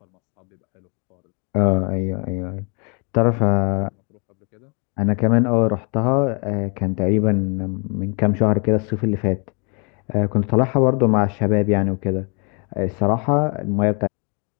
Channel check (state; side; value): quieter; right; 34.4 dB